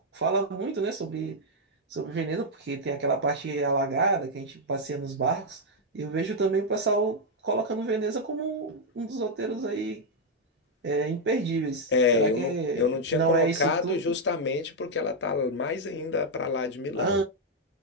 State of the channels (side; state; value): both; normal; correlation 0.00